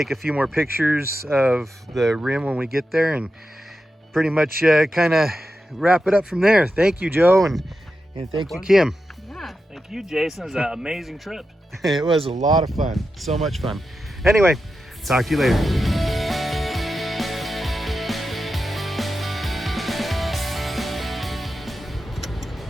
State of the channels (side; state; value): both; normal; correlation 0.90